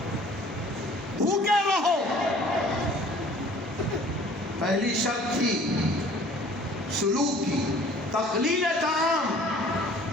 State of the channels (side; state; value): both; normal; correlation 0.51